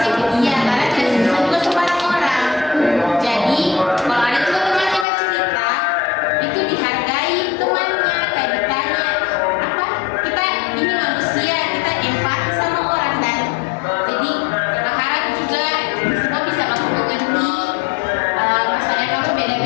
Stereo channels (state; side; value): drops out; right; at 5.1 s